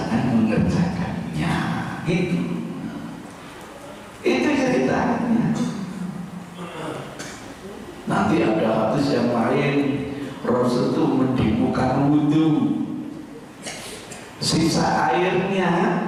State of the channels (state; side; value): identical; both; correlation 1.00